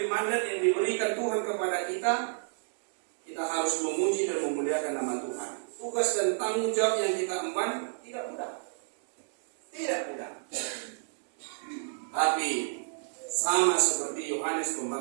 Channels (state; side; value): silent; left; digital silence